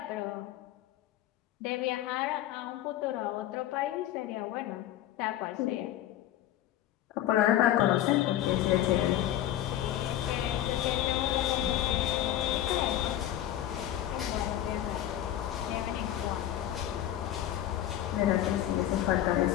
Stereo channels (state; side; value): quieter; right; 12.5 dB